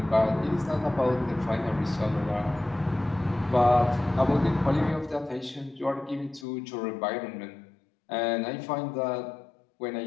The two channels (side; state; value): right; drops out; at 6.5 s